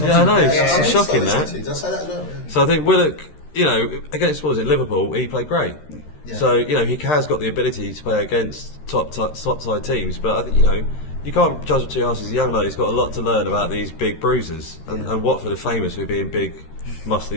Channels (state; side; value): late; right; 13 ms